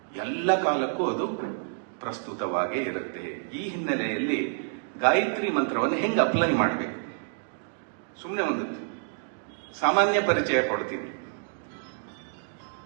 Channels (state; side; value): silent; left; digital silence